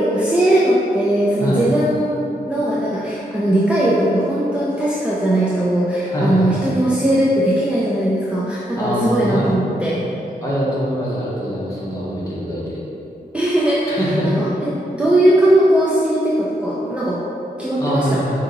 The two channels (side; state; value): both; normal; correlation 0.78